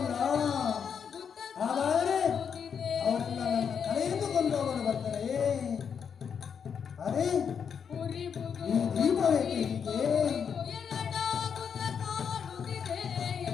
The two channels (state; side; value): quieter; right; 7.1 dB